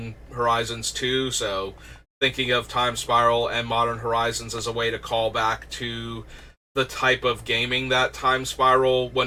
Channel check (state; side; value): identical; both; correlation 1.00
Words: Horizons 2. So, thinking of Time Spiral and Modern Horizons as a way to call back to the type of gaming that Time Spiral,